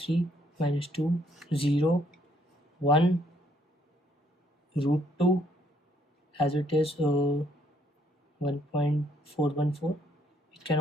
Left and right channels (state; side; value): normal; both; correlation 0.68